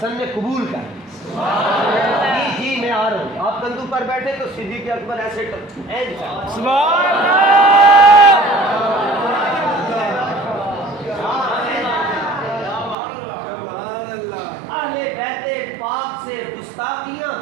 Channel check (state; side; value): drops out; left; at 13.0 s